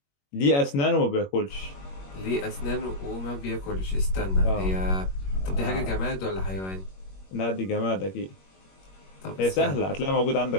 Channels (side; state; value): right; late; 21 ms